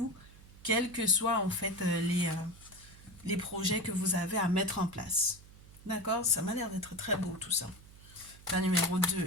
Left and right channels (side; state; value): right; noise; hum, 21 dB below the sound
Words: quels que soient en fait les projets que vous avez à mettre en place. D'accord? Ça m'a l'air d'être très beau tout ça. La numéro 2